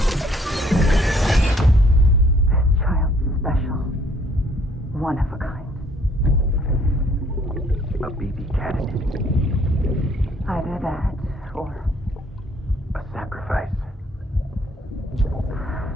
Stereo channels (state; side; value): normal; both; correlation 0.62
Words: Child's special. One of a kind. A baby candidate. Either that, or... a sacrifice.